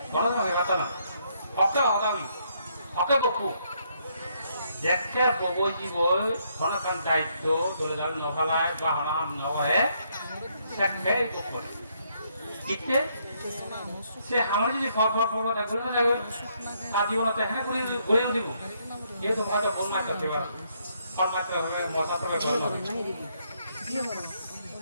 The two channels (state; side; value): inverted; both; correlation -0.72